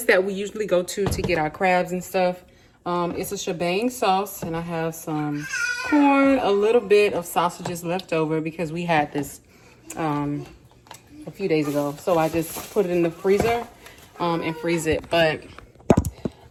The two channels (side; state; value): both; identical; correlation 1.00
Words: that we usually go to get our crabs and stuff. It's a shebang sauce, and I have some corn, a little bit of sausages left over because we had this a few days ago. So I just put it in the freezer and freeze it. But